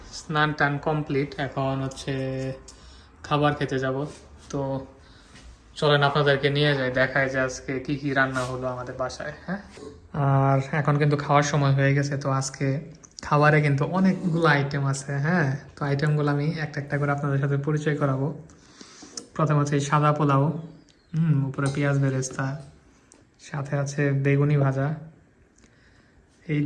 স্নান টান কমপ্লিট, এখন হচ্ছে খাবার খেতে যাব। তো চলেন আপনাদেরকে নিয়ে যাই, দেখায় যে আজকে কি কি রান্না হলো আমাদের বাসায়। হ্যাঁ, আর এখন কিন্তু খাওয়ার সময় হয়ে গেছে। তো আজকে খাবারে কিন্তু অনেকগুলো আইটেম আছে। হ্যাঁ, তো আইটেমগুলো আমি একটা একটা করে আপনাদের সাথে পরিচয় করাবো। প্রথম হচ্ছে সাদা পোলাও, উপরে পেঁয়াজ বেরেস্তা, সাথে আছে বেগুনি ভাজা,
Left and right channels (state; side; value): identical; both; correlation 1.00